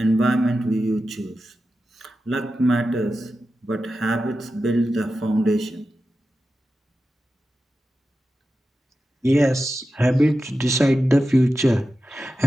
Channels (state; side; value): normal; both; correlation 0.92